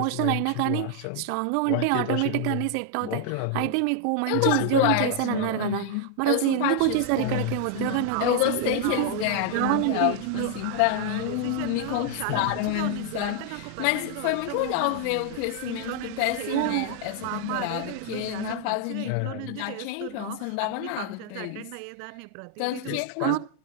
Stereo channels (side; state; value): both; different; correlation 0.00